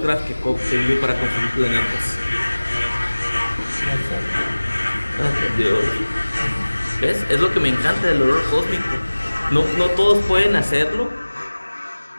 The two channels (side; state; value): both; inverted; correlation -1.00